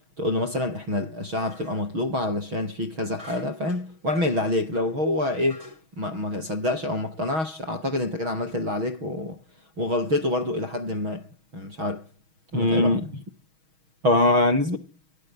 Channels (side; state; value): left; late; 6.3 ms